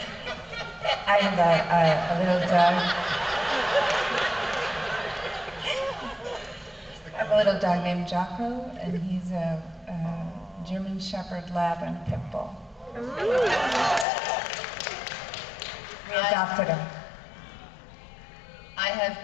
I have a little dog. I have a little dog named Jocko, and he's a German Shepherd Lab and Pit Bull. We adopted him. I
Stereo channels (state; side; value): drops out; right; at 14.1 s